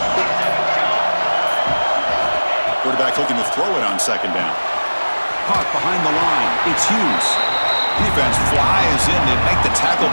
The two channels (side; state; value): both; inverted; correlation -1.00